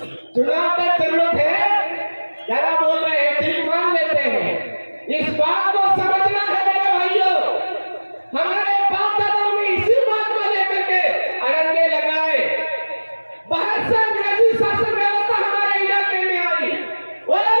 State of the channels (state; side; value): inverted; both; correlation -1.00